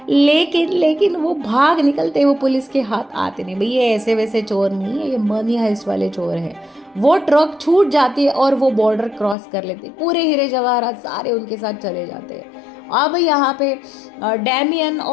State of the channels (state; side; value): drops out; right; at 9.3 s